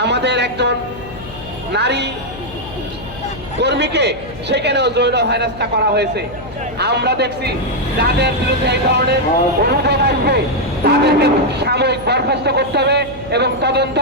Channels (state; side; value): noise; left; hum, 15 dB below the sound